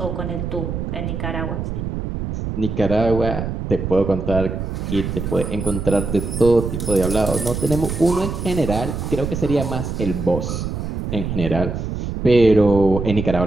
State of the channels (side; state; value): right; noise; rumble, 4 dB below the sound